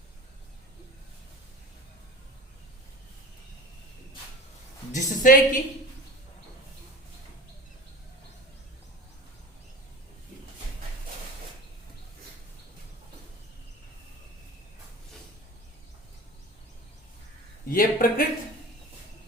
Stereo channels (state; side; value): normal; both; correlation 0.35